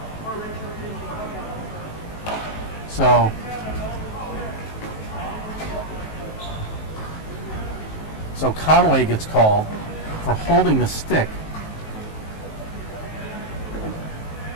So Conway gets called for holding the stick.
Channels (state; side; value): late; right; 19 ms